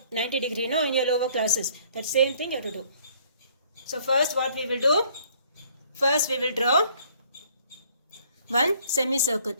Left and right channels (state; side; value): inverted; both; correlation -0.59